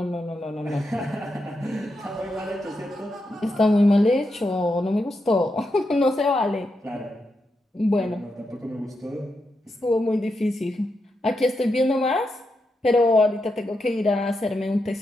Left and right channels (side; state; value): both; normal; correlation 0.85